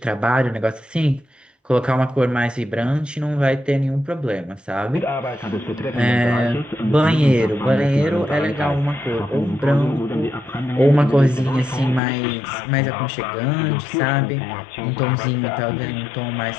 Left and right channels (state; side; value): drops out; right; at 12.0 s